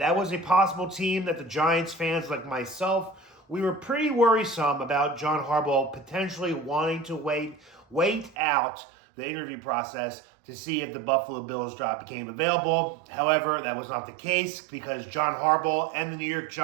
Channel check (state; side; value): drops out; left; at 8.3 s